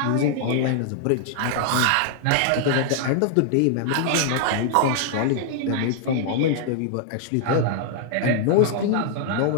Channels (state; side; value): different; both; correlation -0.01